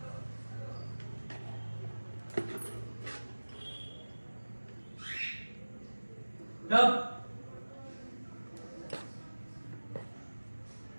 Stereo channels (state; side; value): inverted; both; correlation -1.00